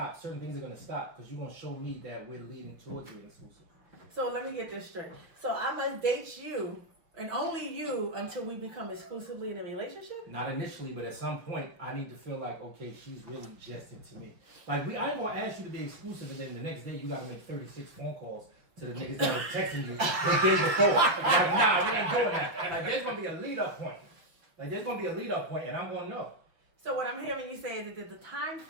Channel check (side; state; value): left; late; 5.9 ms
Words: Certain things are gonna stop because you're gonna show me that we're leading towards being exclusive. So let me get this straight. So I must date you and only you until we become exclusively in a relationship? Not initially, but at some point, I need to feel like, okay, she's really just into me. Like, I ain't gonna ask you to be exclusive, and then the next day you gotta make 36 phone calls to the niggas that was texting you the day before. Like, nah, we ain't doing that. Like, there's gonna be a lead-up point. And I'm gonna know. So what I'm hearing you say is that there's a time